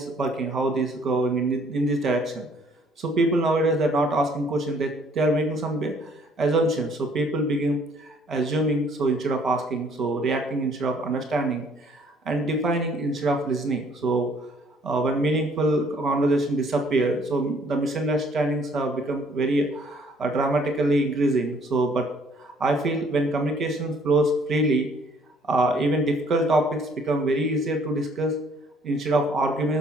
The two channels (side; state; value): both; normal; correlation 0.61